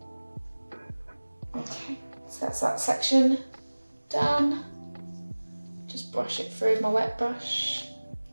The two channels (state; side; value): inverted; both; correlation -1.00